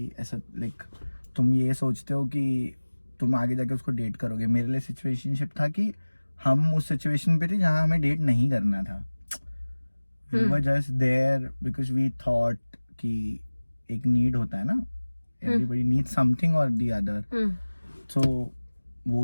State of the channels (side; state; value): both; inverted; correlation -1.00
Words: ऐसा like तुम ये सोचते हो कि तुम आगे जाके उसको डेट करोगे। मेरे लिए सिचुएशनशिप था कि हम उस सिचुएशन पे थे जहाँ हमें डेट नहीं करना था। We were just there because we thought कि एक नीड होता है ना, everybody needs something or the other. So